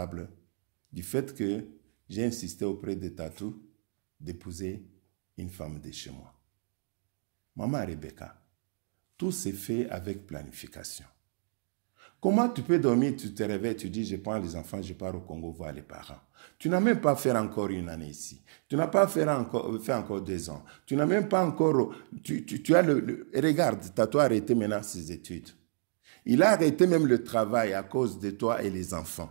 du fait que j'ai insisté auprès de Tatou d'épouser une femme de chez moi. Maman Rebecca, tout s'est fait avec planification. Comment tu peux dormir, tu te réveilles, tu dis, je prends les enfants, je pars au Congo voir les parents. Tu n'as même pas fait encore une année ici. Tu n'as pas fait encore 2 ans. Tu n'as même pas encore... Tu as regarde, Tatou a arrêté maintenant ses études. Il a arrêté même le travail à cause de toi et les enfants.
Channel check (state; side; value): silent; left; digital silence